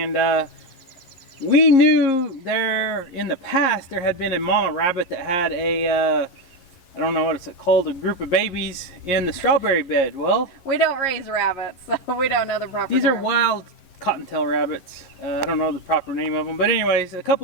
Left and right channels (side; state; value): right; late; 11 ms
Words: we knew there in the past there had been a mama rabbit that had a I don't know what it's called, a group of babies in the strawberry bed. Well, we don't raise rabbits, so we don't know the proper These term. are wild cottontail rabbits. I don't know the proper name of them. But anyways, a